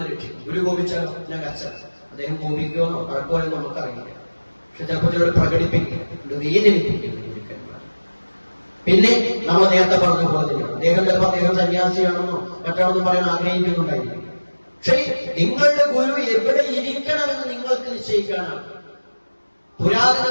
രക്ഷിക്കും. ഗുരു കോപിച്ചാൽ ഞാൻ കർച്ചന. അദ്ദേഹം കോപിക്കുമെന്നോ കുഴപ്പമെന്നോ നമുക്കറിയില്ല. പക്ഷെ ചിലപ്പോൾ ചിലർ പ്രകടിപ്പിക്കും, വേദനിപ്പിക്കും. പിന്നെ നമ്മൾ നേരത്തെ പറഞ്ഞ പോലെ തന്നെയാണ് അദ്ദേഹം ചിലപ്പോൾ അദ്ദേഹം സന്യാസിയാണെന്നോ മറ്റാണെന്നും പറയാൻ ആഗ്രഹിക്കുന്നുണ്ടായിരിക്കും. പക്ഷേ നിങ്ങളുടെ ഗുരു എവിടെ ഇരിക്കണമെന്ന് നിങ്ങൾക്ക് നിശ്ചയിക്കാനാണ്.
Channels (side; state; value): both; inverted; correlation -1.00